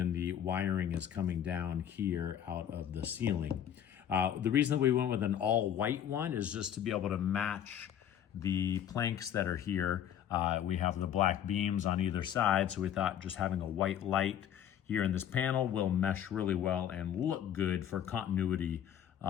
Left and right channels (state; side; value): quieter; right; 9.9 dB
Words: the wiring is coming down here out of the ceiling. The reason that we went with an all white one is just to be able to match the planks that are here. We have the black beams on either side, so we thought just having a white light here in this panel will mesh really well and look good for continuity